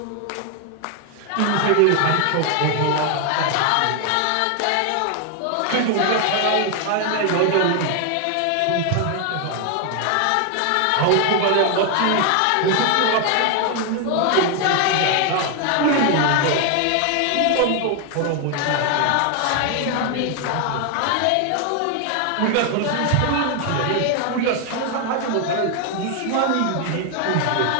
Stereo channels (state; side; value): different; both; correlation 0.01